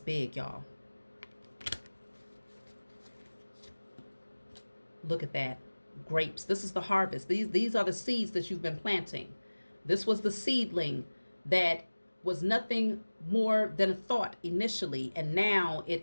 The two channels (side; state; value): both; inverted; correlation -1.00